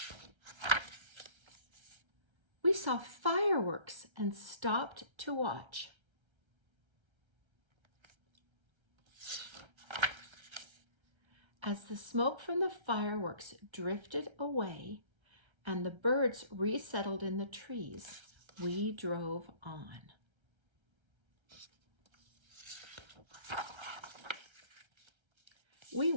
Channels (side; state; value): left; late; 1.3 ms